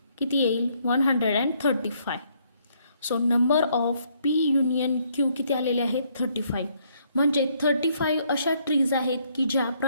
किती येईल 135. So number of P union Q किती आलेले आहेत 35. म्हणजे 35 अशा ट्रीज आहेत की ज्या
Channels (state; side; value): inverted; both; correlation -0.69